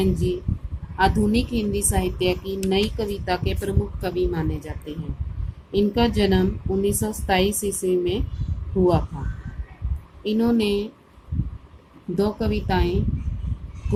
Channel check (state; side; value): identical; both; correlation 1.00